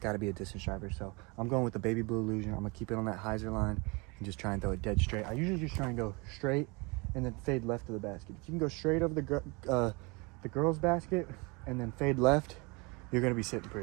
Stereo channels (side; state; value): left; quieter; 27.9 dB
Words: got to be a distance driver. So I'm going with the Baby Blue Illusion. I'm gonna keep it on that hyzer line and just try and throw it dead straight. I usually just try and go straight and then fade left to the basket. If you can go straight over the girls' basket and then fade left, you're gonna be sitting